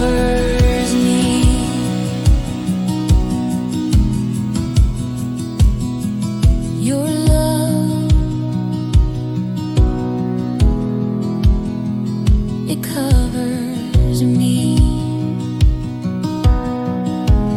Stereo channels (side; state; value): both; identical; correlation 1.00